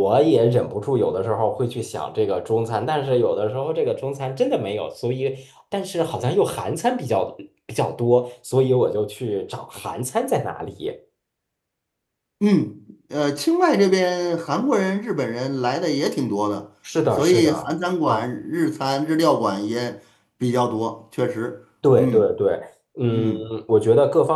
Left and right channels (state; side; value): identical; both; correlation 1.00